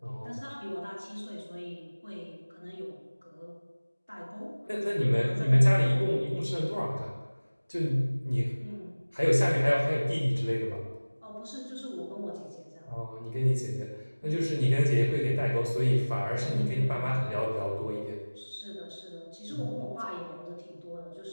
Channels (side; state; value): both; inverted; correlation -1.00